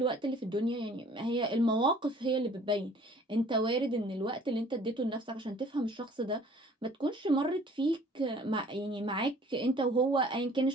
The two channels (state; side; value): normal; both; correlation 0.53